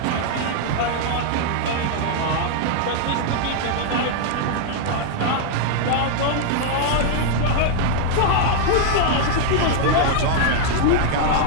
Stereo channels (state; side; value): different; both; correlation 0.00